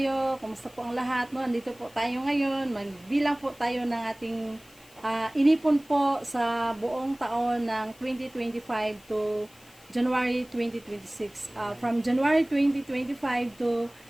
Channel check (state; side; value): noise; left; hiss, 25 dB below the sound